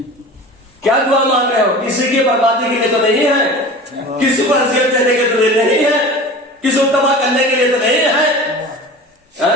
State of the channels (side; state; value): both; normal; correlation 0.36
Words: کیا دعا مانگ رہے ہو؟ کسی کی بربادی کے لیے تو نہیں ہے, کسی کو اذیت دینے کے لیے نہیں ہے, کسی کو تباہ کرنے کے لیے تو نہیں ہے.